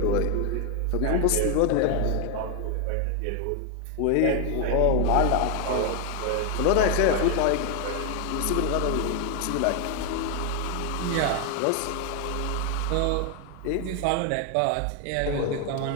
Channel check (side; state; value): both; different; correlation 0.01